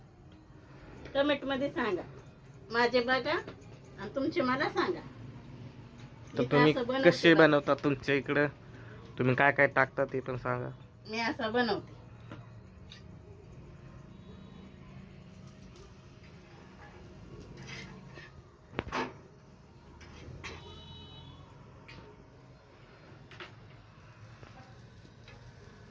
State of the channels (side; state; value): both; identical; correlation 1.00